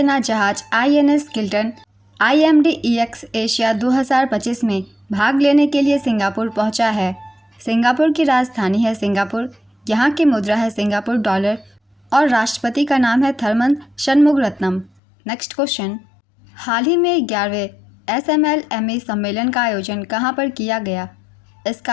जहाज INS किल्टन IMDEX एशिया 2025 में भाग लेने के लिए सिंगापुर पहुंचा है। सिंगापुर की राजधानी है सिंगापुर। यहाँ की मुद्रा है सिंगापुर डॉलर और राष्ट्रपति का नाम है थरमन शनमुगरत्नम। नेक्स्ट क्वेश्चन, हाल ही में 11वें SMLME सम्मेलन का आयोजन कहाँ पर किया गया? इसका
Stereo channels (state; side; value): drops out; right; at 14.9 s